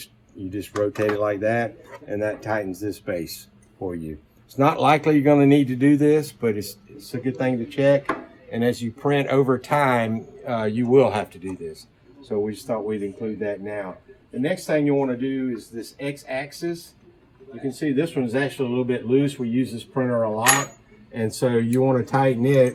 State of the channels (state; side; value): identical; both; correlation 1.00